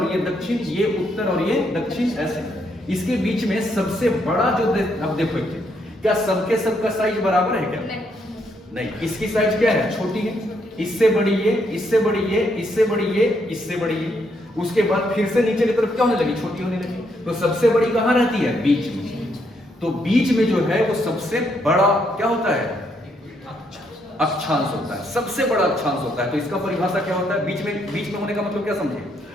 ये दक्षिण, ये उत्तर और ये दक्षिण, ऐसे। इसके बीच में सबसे बड़ा जो अब देखो क्या सबके सबका साइज बराबर है क्या? नहीं, इसकी साइज क्या है? छोटी है, इससे बड़ी ये, इससे बड़ी ये, इससे बड़ी ये, इससे बड़ी ये, उसके बाद फिर से नीचे की तरफ क्या होने लगी? छोटी होने लगी। तो सबसे बड़ी कहां रहती है? बीच में। तो बीच में जो है वो सबसे बड़ा क्या होता है? अक्षांश होता है, सबसे बड़ा अक्षांश होता है। तो इसका परिभाषा क्या होता है? बीच में होने का मतलब क्या समझे?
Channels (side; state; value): both; normal; correlation 0.75